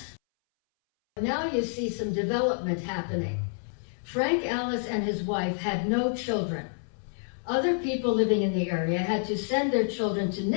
Now you see some development happening. Frank Allis and his wife had no children. Other people living in the area had to send their children to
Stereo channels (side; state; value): right; silent; 59 dB below the other